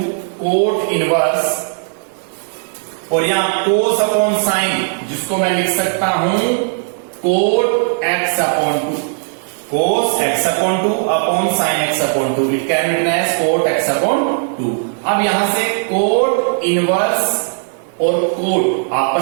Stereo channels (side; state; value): left; silent; 67 dB below the other